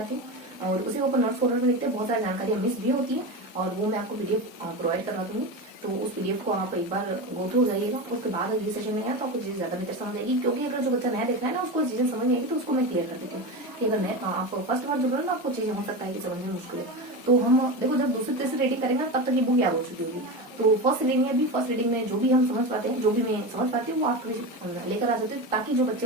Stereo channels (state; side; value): normal; both; correlation 0.22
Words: हूँ और उसी को अपन नोट्स फोल्डर में लिखते हैं। बहुत सारी जानकारियां मिस भी होती है और वो मैं आपको पीडीएफ प्रोवाइड करवा दूंगी। तो उस पीडीएफ को आप एक बार गो थ्रू हो जाइएगा। उसके बाद अगली सेशन में आया तो आपको चीजें ज्यादा बेहतर समझ आएगी, क्योंकि अगर जो बच्चा नया देख रहा है ना उसको चीजें समझ नहीं आएगी तो उसको मैं क्लियर कर देती हूँ कि अगर आप फर्स्ट बार जुड़ रहे हो ना आपको चीजें हो सकता है कि समझने में मुश्किल है। तो हम देखो जब दूसरी तीसरी रीडिंग करेंगे तब तक ये बुक याद हो चुकी होगी। तो फर्स्ट रीडिंग में जो भी हम समझ पाते हैं, जो भी मैं समझ पाती हूँ वो आप लेकर आ जाते हो, ताकि जो